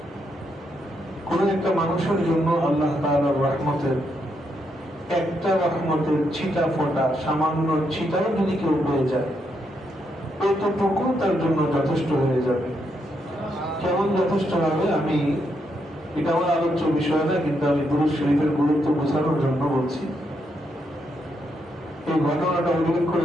কোন একটা মানুষের জন্য আল্লাহ তাআলার রহমতের একটা রহমতের ছিটা ফোটা, সামান্য ছিটাও যদি কেউ পেয়ে যায়, এতটুকু তার জন্য যথেষ্ট হয়ে যাবে। কেমন যথেষ্ট হবে? আমি এটা আমার আলোচ্য বিষয় না, কিন্তু আমি দুরূদ শরীফের গুরুত্ব বোঝানোর জন্য বলছি। এই ঘটনাটা উল্লেখ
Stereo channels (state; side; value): normal; both; correlation 0.79